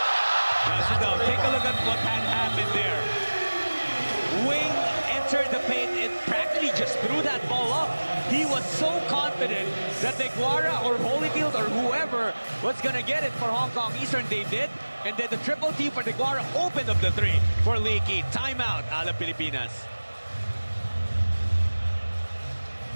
a look at what had happened there. Wing entered the paint and practically just threw that ball up. He was so confident that Deguara or Holyfield or whoever was going to get it for Hong Kong Eastern. They did. And then the triple team for Deguara opened up the three for Leaky. Timeout, Alab Pilipinas.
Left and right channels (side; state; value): both; inverted; correlation -1.00